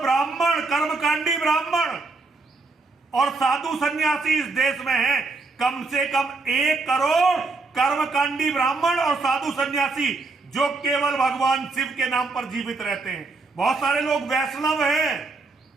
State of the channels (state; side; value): quieter; left; 3.8 dB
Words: कर्मकांडी ब्राह्मण और साधु सन्यासी इस देश में हैं। कम से कम 1 करोड़ कर्मकांडी ब्राह्मण और साधु सन्यासी जो केवल भगवान शिव के नाम पर जीवित रहते हैं। बहुत सारे लोग वैष्णव हैं,